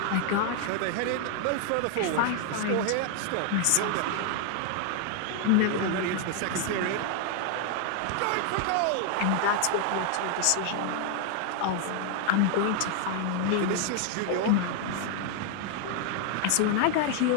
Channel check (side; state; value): both; different; correlation 0.00